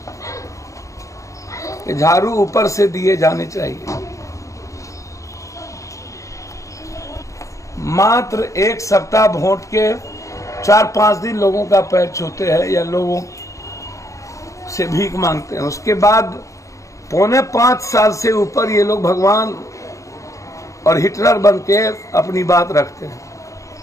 कि झाड़ू ऊपर से दिए जाने चाहिए। मात्र एक सप्ताह वोट के 4-5 दिन लोगों का पैर छूते हैं या लोगों से भीख मांगते हैं, उसके बाद 4.25 साल से ऊपर ये लोग भगवान और हिटलर बन के अपनी बात रखते हैं।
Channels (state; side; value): late; right; 0.15 ms